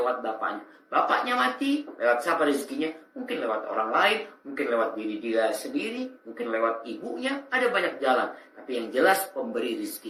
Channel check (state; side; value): identical; both; correlation 1.00